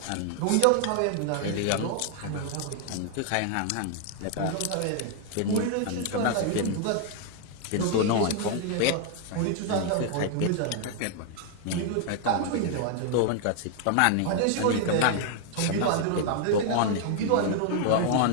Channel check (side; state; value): both; different; correlation 0.00